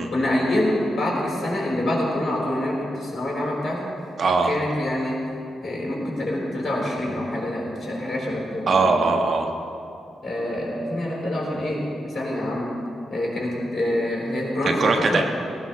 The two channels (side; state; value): both; normal; correlation 0.85